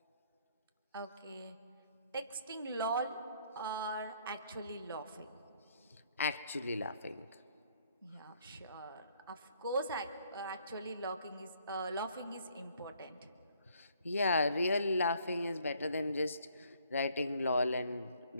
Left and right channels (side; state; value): both; inverted; correlation -0.64